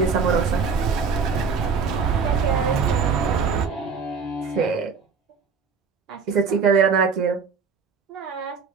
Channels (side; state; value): left; quieter; 5.5 dB